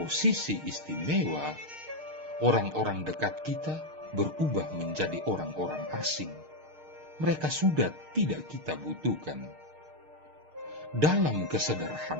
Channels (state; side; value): late; left; 6.5 ms